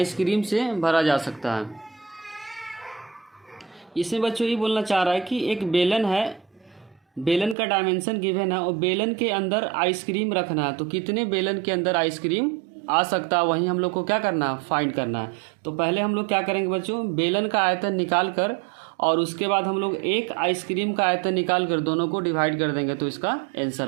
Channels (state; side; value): drops out; left; at 7.6 s